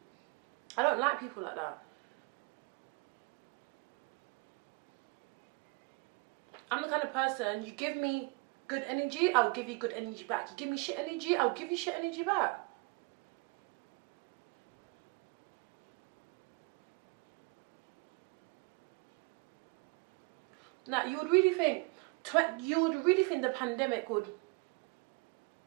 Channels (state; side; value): quieter; left; 28.0 dB